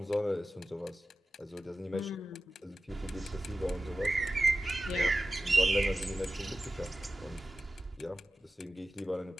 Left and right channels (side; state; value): both; normal; correlation 0.94